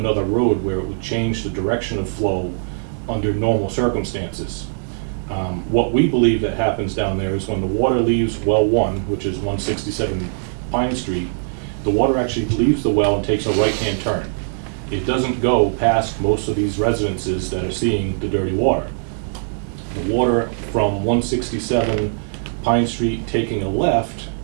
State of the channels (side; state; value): left; silent; 61 dB below the other